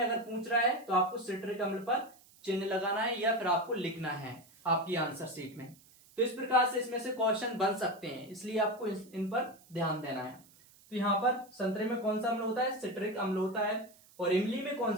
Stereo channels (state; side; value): noise; right; hiss, 26 dB below the sound